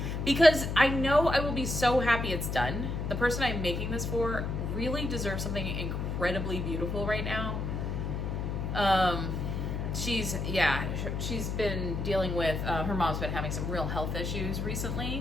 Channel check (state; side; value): noise; left; hum, 2 dB below the sound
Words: Because I know I will be so happy it's done. The person I'm making this for really deserves something incredibly beautiful right now. She's been dealing with, her mom's been having some real health issues